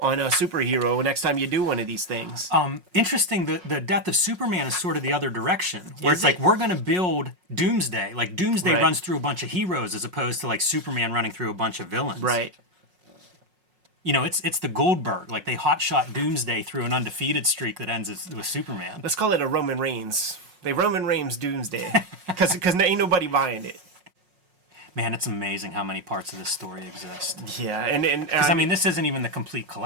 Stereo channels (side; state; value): left; late; 5.5 ms